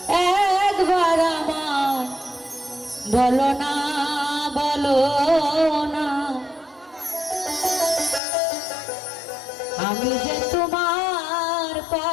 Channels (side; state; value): right; drops out; at 8.2 s